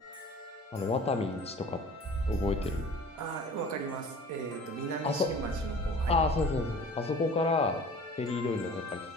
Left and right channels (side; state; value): both; normal; correlation 0.44